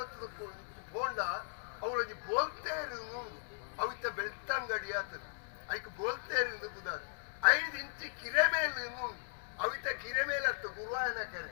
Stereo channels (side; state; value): right; silent; digital silence